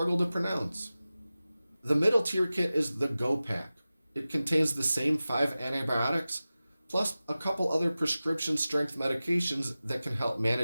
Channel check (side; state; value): both; inverted; correlation -0.96